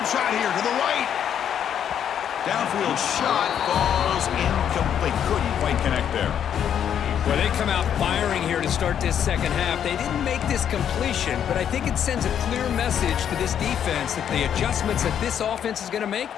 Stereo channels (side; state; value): right; quieter; 9.1 dB